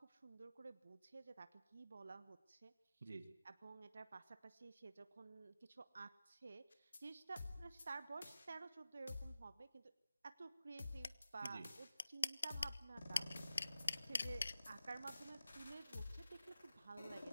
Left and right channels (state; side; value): inverted; both; correlation -0.92